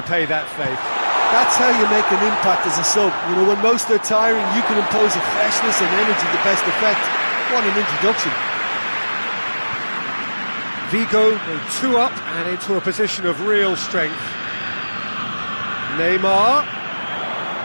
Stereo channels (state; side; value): inverted; both; correlation -1.00